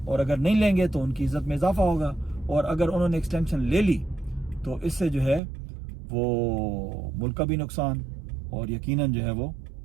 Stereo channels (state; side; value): drops out; left; at 5.4 s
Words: اور اگر نہیں لیں گے تو ان کی عزت میں اضافہ ہوگا، اور اگر انہوں نے ایکسٹینشن لے لی تو اس سے جو ہے وہ ملک کا بھی نقصان، اور یقیناً جو ہے وہ